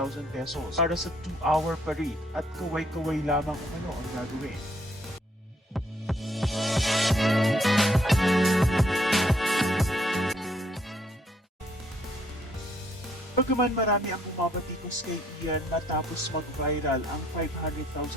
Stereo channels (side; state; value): both; normal; correlation 0.68